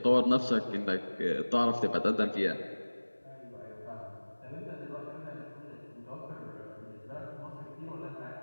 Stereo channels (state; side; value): inverted; both; correlation -1.00